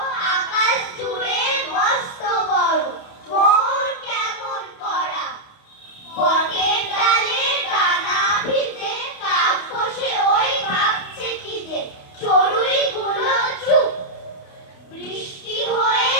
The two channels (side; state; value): right; late; 28 ms